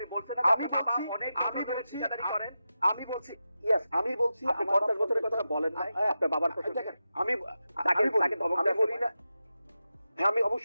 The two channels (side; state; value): both; inverted; correlation -0.91